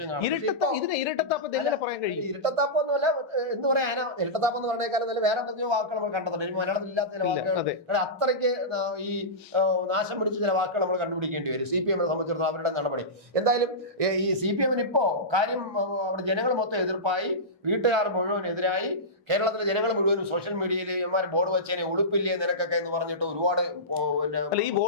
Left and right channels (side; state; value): both; normal; correlation -0.16